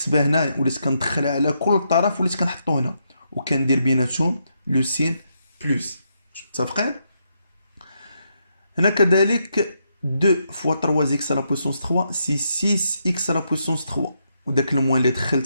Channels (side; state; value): both; inverted; correlation -0.80